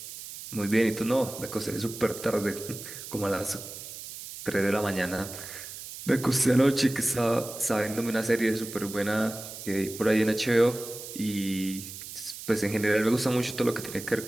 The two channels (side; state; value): right; noise; hiss, 11 dB below the sound